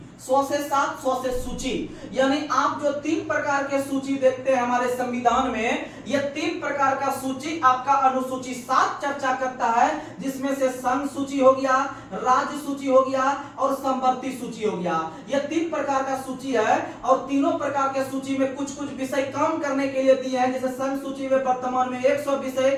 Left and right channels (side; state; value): both; identical; correlation 1.00